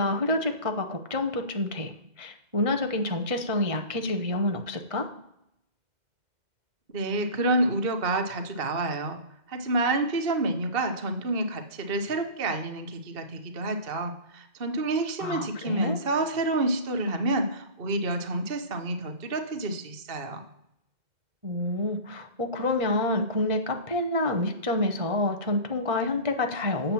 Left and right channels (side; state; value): left; late; 2.0 ms